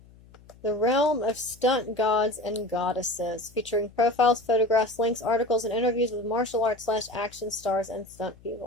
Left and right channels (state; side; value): noise; left; hum, 24 dB below the sound